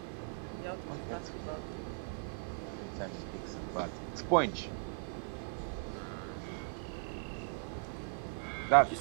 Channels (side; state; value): left; silent; digital silence